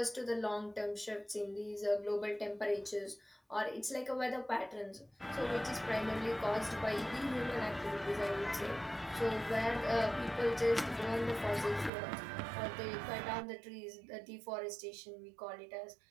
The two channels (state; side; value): drops out; left; at 11.9 s